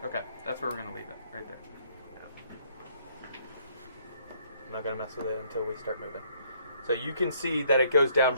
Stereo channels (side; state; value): both; inverted; correlation -0.65